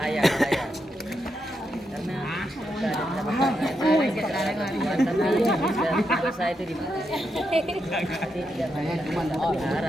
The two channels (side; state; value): both; normal; correlation 0.83